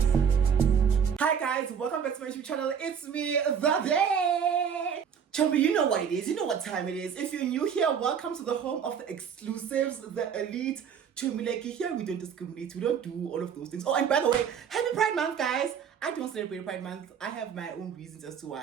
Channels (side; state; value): left; quieter; 7.4 dB